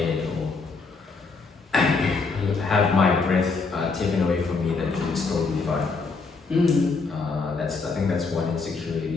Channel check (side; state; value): right; quieter; 4.3 dB